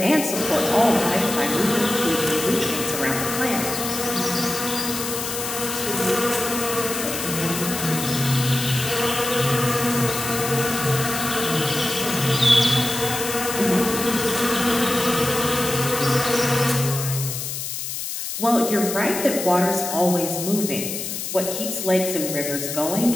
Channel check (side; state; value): left; noise; hiss, 5 dB below the sound